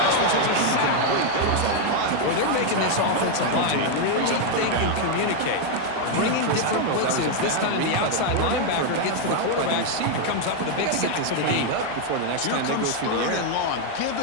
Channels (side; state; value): both; different; correlation 0.01